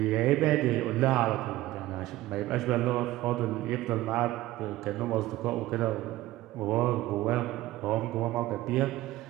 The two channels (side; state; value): left; quieter; 16.5 dB